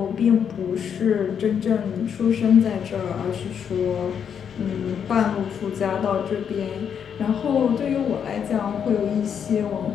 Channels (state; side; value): quieter; right; 7.8 dB